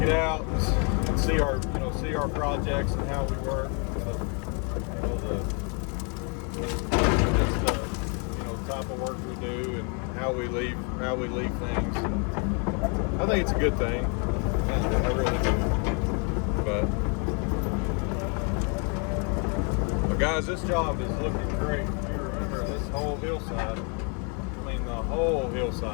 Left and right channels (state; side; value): quieter; right; 37.1 dB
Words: it out and see our projects and how we work. Type of work we do and how we leave things. I think it's a good thing. I really do. But guys, this job is looking great. If you remember this whole hillside, I mean the whole